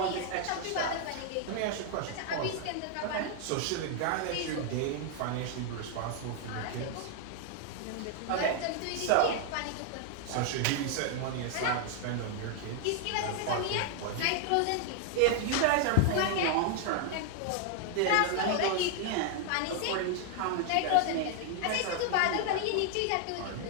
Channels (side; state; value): both; different; correlation 0.00